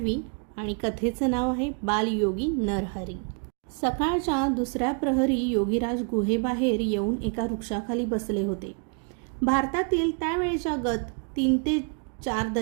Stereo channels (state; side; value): quieter; left; 39.4 dB